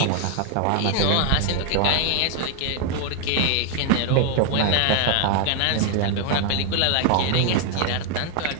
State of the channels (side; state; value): both; different; correlation 0.01